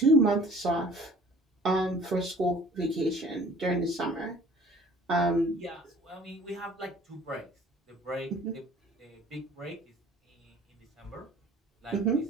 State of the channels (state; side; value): normal; both; correlation 0.50